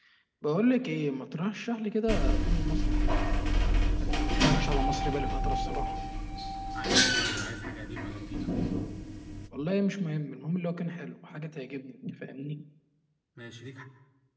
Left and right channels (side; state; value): both; identical; correlation 1.00